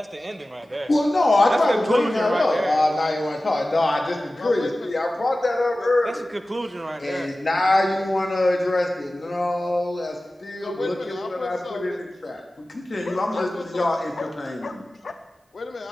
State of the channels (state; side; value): normal; both; correlation 0.96